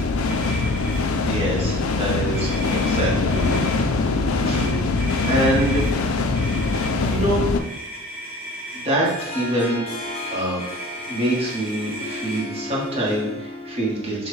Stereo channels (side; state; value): both; normal; correlation 0.45